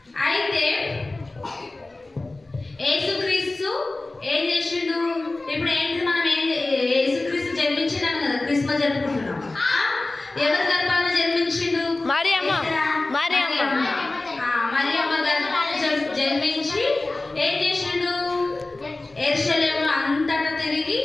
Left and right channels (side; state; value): right; quieter; 3.0 dB